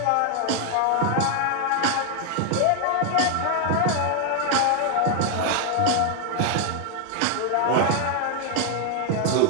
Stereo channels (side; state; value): both; different; correlation 0.00